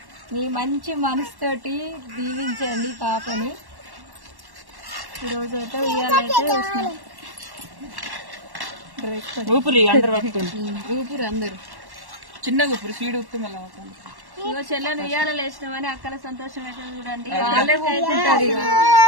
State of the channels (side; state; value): left; late; 1.1 ms